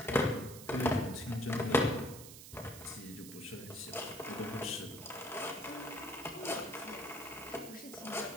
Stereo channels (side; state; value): right; noise; hiss, 13 dB below the sound